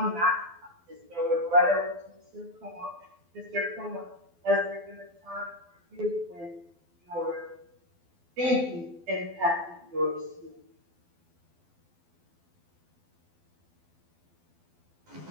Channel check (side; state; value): left; late; 12 ms